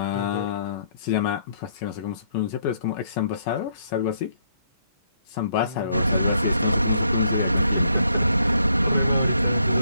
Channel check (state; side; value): inverted; both; correlation -0.71